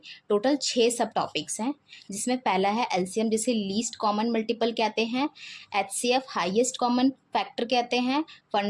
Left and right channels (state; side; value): identical; both; correlation 1.00